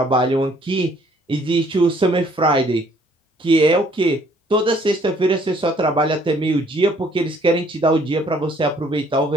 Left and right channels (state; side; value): normal; both; correlation 0.62